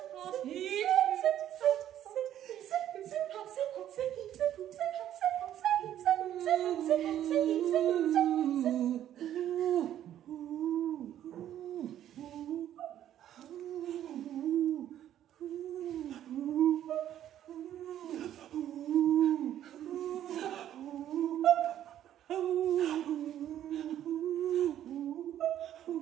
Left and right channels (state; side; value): quieter; left; 11.4 dB